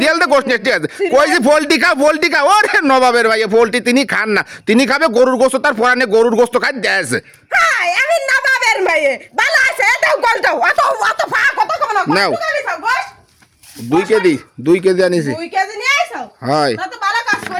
কই যে পোল্ট্রি খা ওরে নবাবের ভাই পোল্ট্রি তিনি খান না তিনি খাবে গরুর গোশত তার পরানে গরুর গোশত খাই দেয়ছে হাই আমি নবাবের মেয়ে ভালো আছে এটাও গলটাও অত ফা কত কম না নাও 2 কেজি আনিছি 2 কেজি নিয়ে আইছো হয় তা তো ভালো কাজ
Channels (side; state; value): both; identical; correlation 1.00